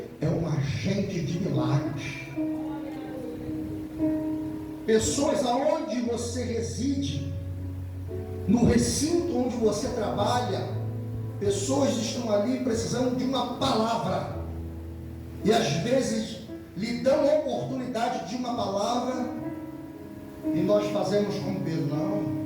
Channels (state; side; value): identical; both; correlation 1.00